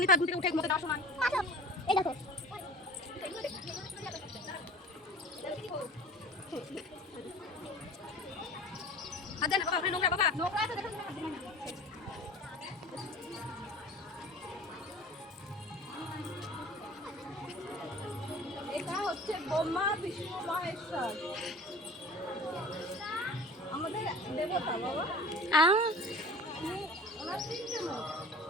নিতে থেকে উঠে মতো দেওয়ার সময় এই দেখো আচ্ছা না বাবা, ওখানে নোংরা বাবা, নোংরা আছে দেখো। এটা হচ্ছে ব্রহ্মা বিষ্ণু মহেশ্বর, আমাদের দেবতা বাবা। আ ওনার তিনটে মুখ,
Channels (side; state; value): both; normal; correlation 0.41